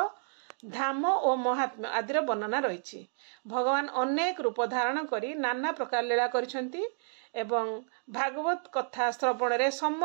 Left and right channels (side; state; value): left; silent; digital silence